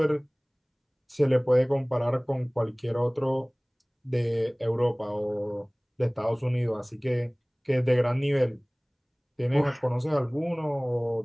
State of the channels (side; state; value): both; identical; correlation 1.00